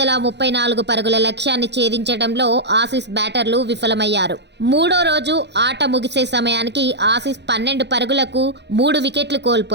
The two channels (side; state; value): left; late; 0.50 ms